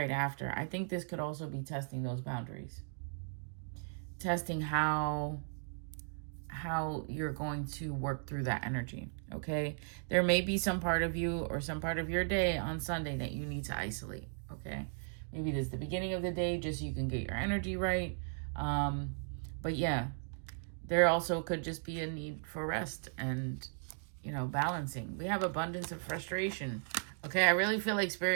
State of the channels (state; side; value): silent; left; digital silence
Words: after. I think this could also be testing those boundaries. Testing how you're going to work through that energy, okay? There may be some part of you or some part of your day on Sunday that you need to isolate, okay? Maybe this is the beginning of the day just so you can get your energy right. But yeah, there also could just be a need for rest and, balancing. We have abundance of frustration, okay? I really feel like